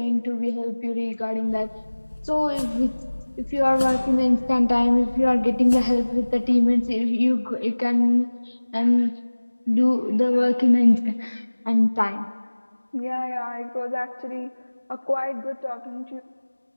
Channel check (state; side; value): inverted; both; correlation -1.00